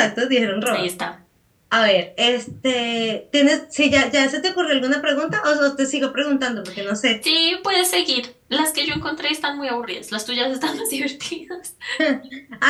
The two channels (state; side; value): identical; both; correlation 1.00